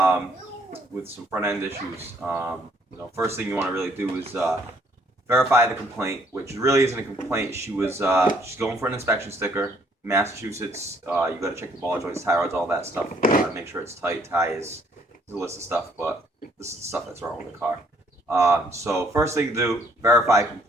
with some front end issues. First thing you want to really do is verify the complaint, which really isn't a complaint. She's going for an inspection sticker. Massachusetts, you got to check the ball joints, tie rods, all that stuff. Make sure it's tight. Tires, there's a list of stuff, but this is the stuff that's wrong with the car. So first thing to do, verify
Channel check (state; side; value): normal; both; correlation 0.64